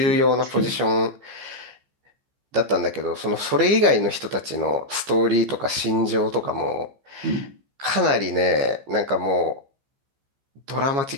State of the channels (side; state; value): left; late; 15 ms